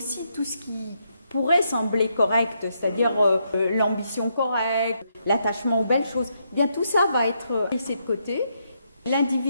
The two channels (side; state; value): both; inverted; correlation -0.78